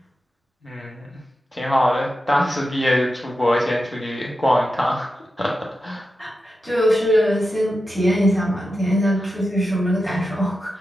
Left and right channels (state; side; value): normal; both; correlation 0.90